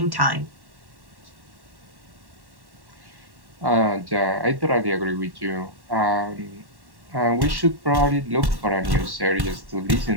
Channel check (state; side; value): late; left; 1.1 ms